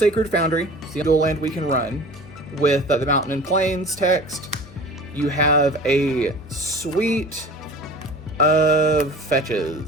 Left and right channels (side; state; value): both; normal; correlation 0.41